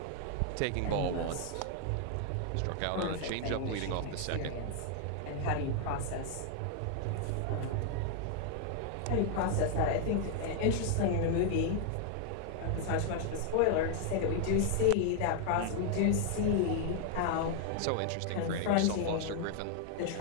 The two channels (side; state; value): both; different; correlation 0.00